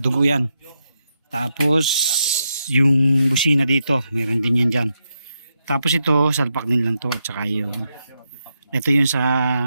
yan. Tapos yung busina dito, meron din yan dyan. Tapos ito, salpak din lang to. At saka yung ito yung sa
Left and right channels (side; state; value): both; inverted; correlation -0.84